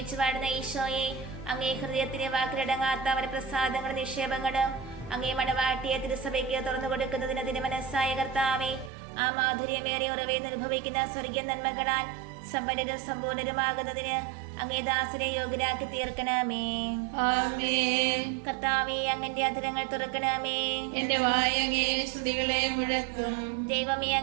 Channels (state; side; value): drops out; left; at 8.9 s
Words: വാഴുന്ന ഈശോയെ, അങ്ങേ ഹൃദയത്തിന് വാക്കിലടങ്ങാത്ത അവരുടെ പ്രസാദങ്ങളും നിക്ഷേപങ്ങളും അങ്ങേ മണവാട്ടിയെ തിരുസഭയ്ക്ക് തുറന്നു കൊടുക്കുന്നതിന് തിരുമനസ്സായ കർത്താവേ, ആ മാധുര്യമേറിയ ഉറവേന്ന് അനുഭവിക്കുന്ന സ്വർഗീയ നന്മകളാൽ സമ്പന്നരും സമ്പൂർണരുമാകുന്നതിന് അങ്ങേ ദാസനെ യോഗ്യരാക്കി തീർക്കണമേ. ആമേൻ. കർത്താവേ, അങ്ങന്റെ അധരങ്ങൾ തുറക്കണമേ. എന്റെ വായ് അങ്ങേ സ്തുതികളെ മുഴക്കും. ദൈവമേ,